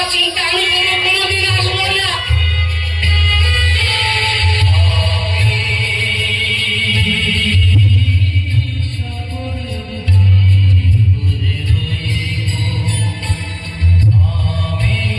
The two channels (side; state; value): both; identical; correlation 1.00